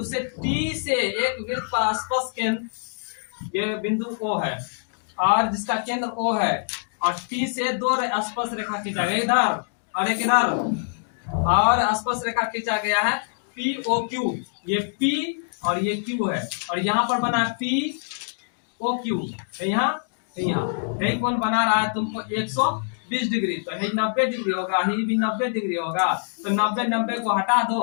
से टी से एक वृत्त पर स्पर्श केंद्र, ये बिंदु O है और जिसका केंद्र O है, और टी से दो स्पर्श रेखा खींचा गया इधर और एक इधर, और स्पर्श रेखा खींचा गया है POQ, ये P और ये Q है, और यहाँ पर बना है POQ, यहाँ यही कौन बना रहा है तुमको 120 डिग्री, तो यही 90 डिग्री होगा, यही भी 90 डिग्री होगा, तो 90 को हटा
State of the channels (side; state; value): right; silent; digital silence